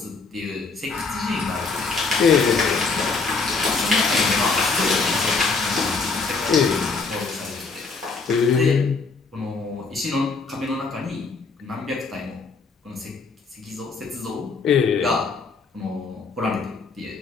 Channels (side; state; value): right; quieter; 4.4 dB